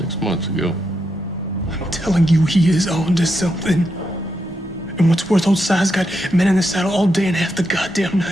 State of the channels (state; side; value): normal; both; correlation 0.83